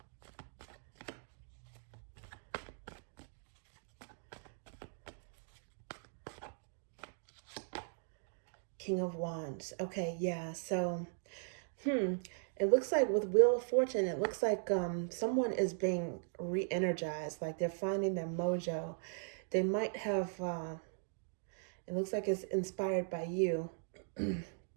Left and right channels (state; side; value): silent; left; digital silence